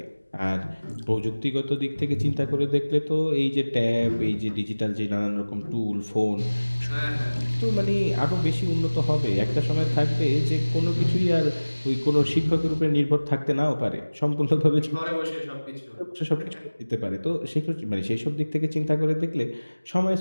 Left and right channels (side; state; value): both; inverted; correlation -1.00